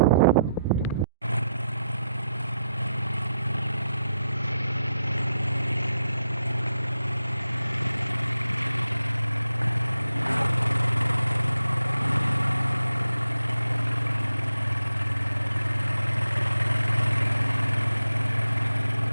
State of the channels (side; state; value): both; inverted; correlation -0.84